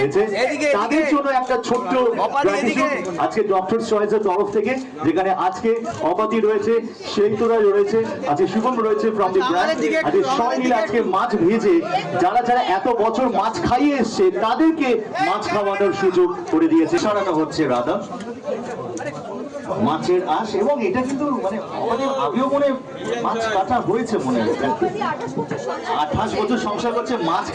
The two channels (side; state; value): both; identical; correlation 1.00